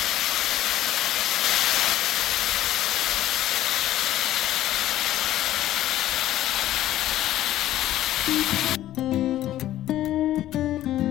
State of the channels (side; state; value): right; quieter; 13.6 dB